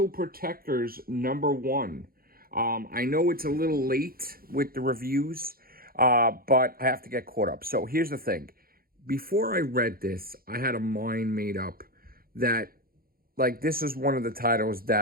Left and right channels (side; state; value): left; late; 0.43 ms